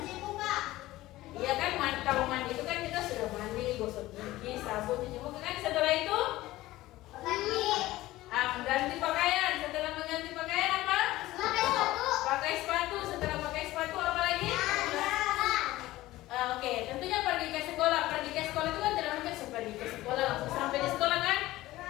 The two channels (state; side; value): quieter; right; 17.0 dB